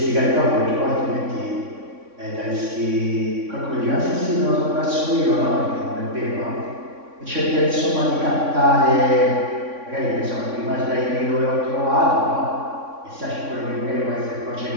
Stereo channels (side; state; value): left; late; 3.6 ms